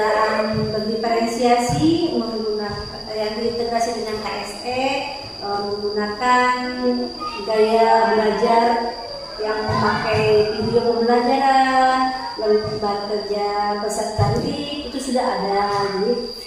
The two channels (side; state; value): both; identical; correlation 1.00